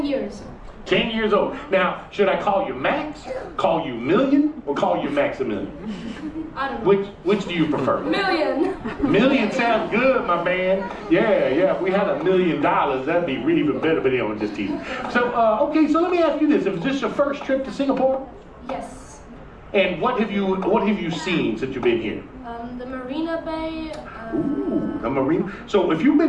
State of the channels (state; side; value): identical; both; correlation 1.00